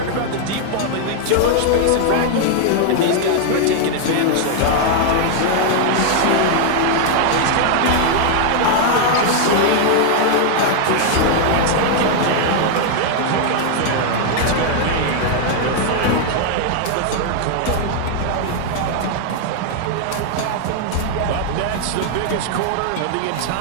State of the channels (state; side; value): different; both; correlation 0.00